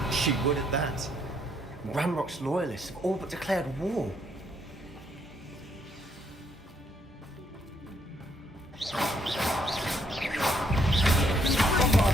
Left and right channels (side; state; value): both; normal; correlation 0.71